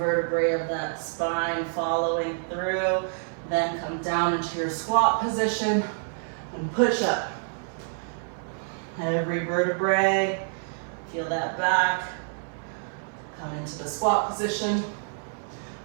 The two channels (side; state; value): left; silent; 58 dB below the other